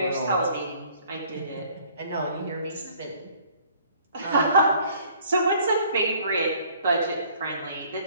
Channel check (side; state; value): both; inverted; correlation -0.57